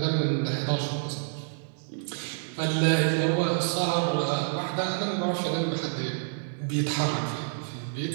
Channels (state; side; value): silent; left; digital silence